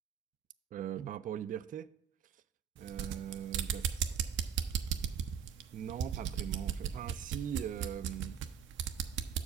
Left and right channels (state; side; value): quieter; left; 8.4 dB